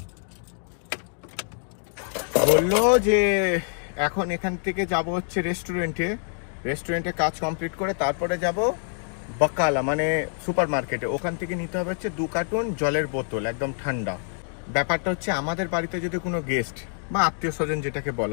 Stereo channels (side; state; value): right; silent; 61 dB below the other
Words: বললো যে এখন এখান থেকে যাব হচ্ছে রেস্টুরেন্টে কাজ কমপ্লিট করে তারপরে যাব বকালা মানে সুপার মার্কেটে। ওখান থেকে নিতে হবে হচ্ছে 2 কার্টুন জলের বোতল একদম ঠান্ডা। ব্যাপারটা হচ্ছে আমাদের বাড়িতে যদি কোনো গেস্ট বা আত্মীয় স্বজন যেটাকে